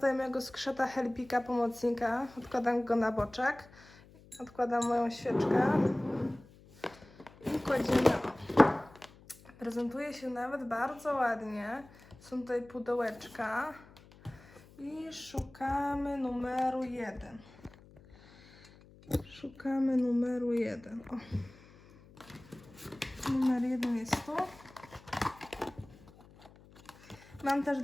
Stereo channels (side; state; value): left; noise; hum, 24 dB below the sound